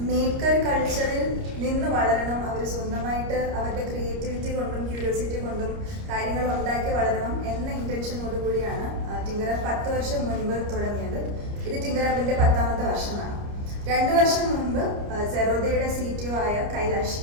മേക്കർ കൾച്ചറിൽ നിന്ന് വളരണം, അവർ സ്വന്തമായിട്ട് അവരുടെ ക്രിയേറ്റിവിറ്റി കൊണ്ടും ക്യൂരിയോസിറ്റി കൊണ്ടും കാര്യങ്ങൾ ഉണ്ടാക്കി വളരണം എന്ന ഇൻറ്റൻഷനോടുകൂടിയാണ് തിങ്കർ ഹബ് 10 വർഷം മുൻപ് തുടങ്ങിയത്. ഇത് തിങ്കർ ഹബിൻ്റെ 10ാമത്തെ വർഷമാണ്. 2 വർഷം മുൻപ് സെറോദയുടെ CTO ആയ കൈലാഷ്,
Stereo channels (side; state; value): left; late; 29 ms